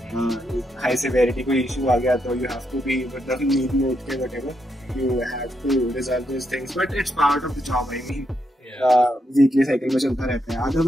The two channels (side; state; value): both; normal; correlation 0.80